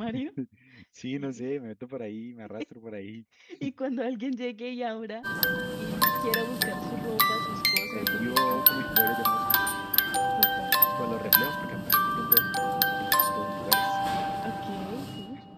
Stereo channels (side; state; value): both; identical; correlation 1.00